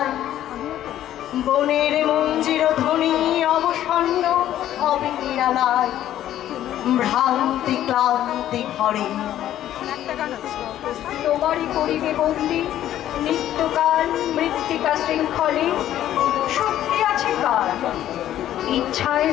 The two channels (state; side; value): quieter; right; 12.2 dB